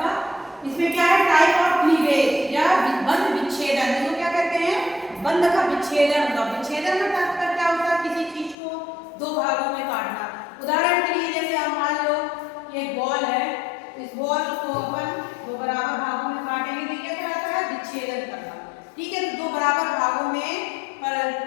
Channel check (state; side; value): drops out; right; at 8.6 s